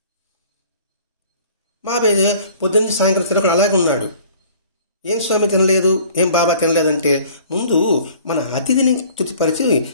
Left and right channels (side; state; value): both; inverted; correlation -0.51